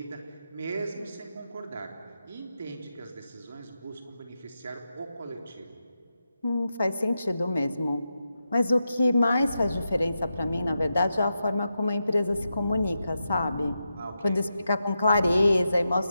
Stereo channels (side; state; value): both; inverted; correlation -0.88